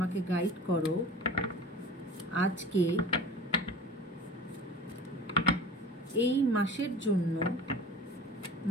গাইড করো আজকে এই মাসের জন্য,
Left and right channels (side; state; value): both; normal; correlation 0.39